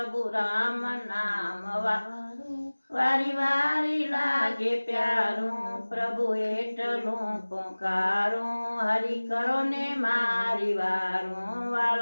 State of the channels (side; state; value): both; inverted; correlation -1.00